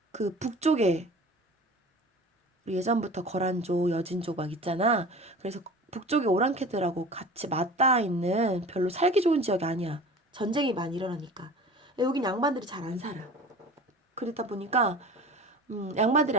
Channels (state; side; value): normal; both; correlation 0.39